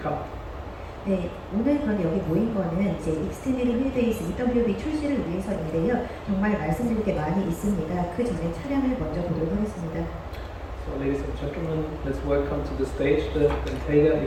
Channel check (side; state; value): both; identical; correlation 1.00